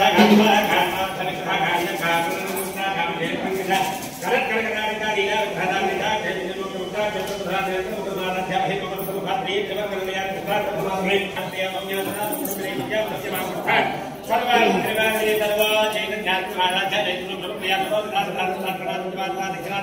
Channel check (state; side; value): identical; both; correlation 1.00